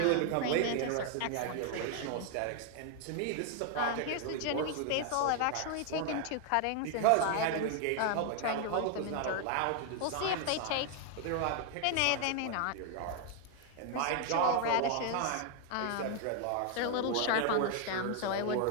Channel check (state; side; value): different; both; correlation 0.00